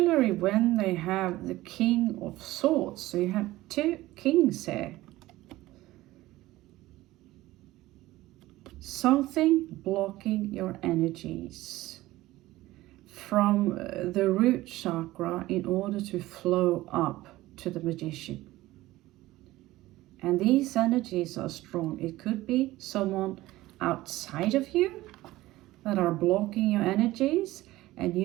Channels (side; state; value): left; quieter; 17.3 dB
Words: when they have the King of Swords, so you have two kings here. Something blocking your energies from the root chakra in order to flow up to the magician. And these energies are strong. It could be someone outside of you that are blocking your energies, and